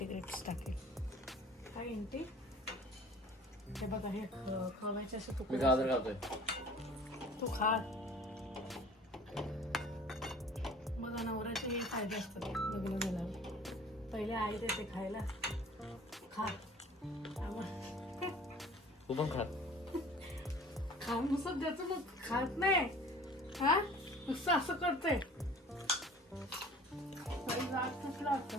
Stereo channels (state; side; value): normal; both; correlation 0.47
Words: टाकेल. हा इंटी हे बघा, हे खवायचे असे मी तुकडे गाजर खातोय. तू खा. मग नवऱ्याचे हे फायदे असतात लग्न झाल्यावर. पहिले आई देते खायला, खा. तू पण खात. खाऊन नुसतं द्यायचं, मग खात नाही. हा, नुसतं असं करते.